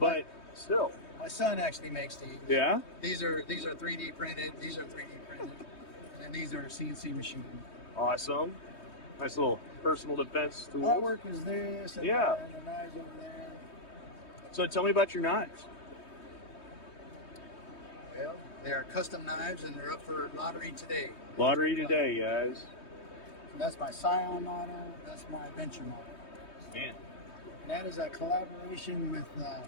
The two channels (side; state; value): right; late; 3.2 ms